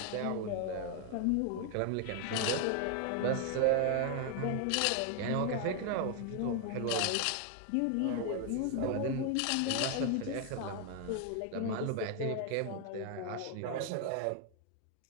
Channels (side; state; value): both; different; correlation 0.00